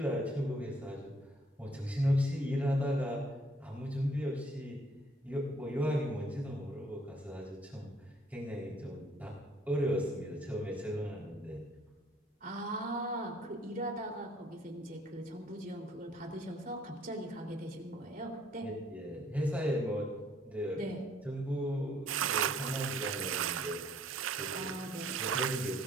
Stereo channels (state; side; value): normal; both; correlation 0.62